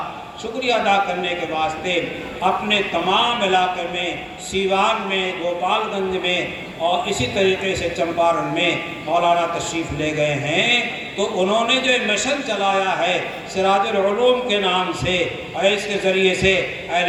شکریہ ادا کرنے کے واسطے اپنے تمام علاقے میں، سیوان میں، گوپال گنج میں اور اسی طریقے سے چمپارن میں مولانا تشریف لے گئے ہیں، تو انہوں نے جو مشن چلایا ہے سراج العلوم کے نام سے، اور اس کے ذریعے سے اہل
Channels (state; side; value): identical; both; correlation 1.00